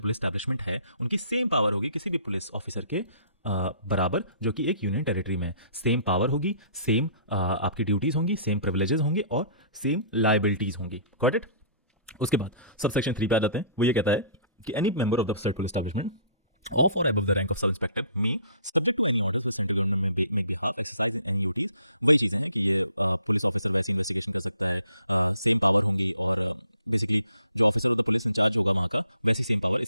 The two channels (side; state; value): both; inverted; correlation -0.55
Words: एस्टैब्लिशमेंट है, उनकी सेम पावर होगी किसी भी पुलिस ऑफिसर के बराबर जो कि एक यूनियन टेरिटरी में। सेम पावर होगी, सेम आपकी ड्यूटीज़ होंगी, सेम प्रिविलेजेस होंगे और सेम लाइबिलिटीज़ होंगी। Got it? उसके बाद सब सेक्शन 3 पे आ जाते हैं। वो ये कहता है कि any member of the state police establishment of or above the rank of sub inspector me subject to any orders with central government may make behalf exercise in any duties। वही चीज़ें हैं कि ये पुलिस ऑफिसर वैसे investigation कर सकता है, same power होंगी, और बेसिकली जो officer of the police in charge होगा वहाँ का, वैसी सेम पावर